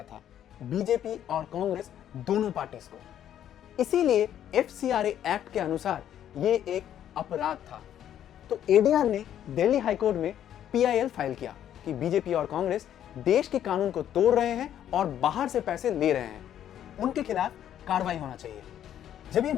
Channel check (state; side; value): quieter; right; 10.6 dB